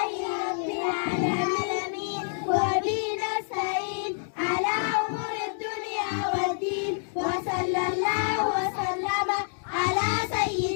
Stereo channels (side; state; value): right; silent; digital silence